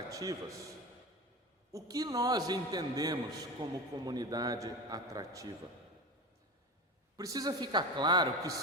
O que nós entendemos como comunidade atrativa? Precisa ficar claro que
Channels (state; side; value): normal; both; correlation 0.25